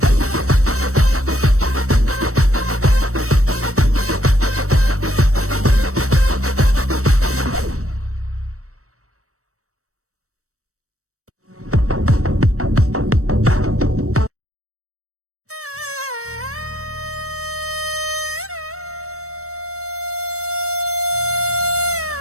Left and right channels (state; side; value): late; left; 0.65 ms